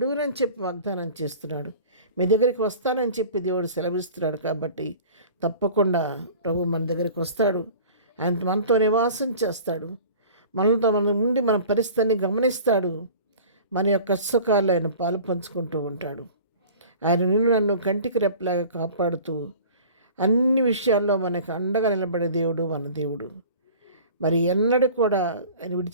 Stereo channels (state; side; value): inverted; both; correlation -0.43